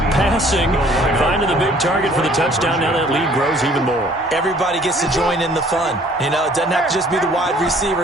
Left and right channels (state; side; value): normal; both; correlation 0.56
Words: passing. Finding the big target for the touchdown. Now that lead grows even more. Everybody gets to join in the fun. You know, it doesn't have to just be the wide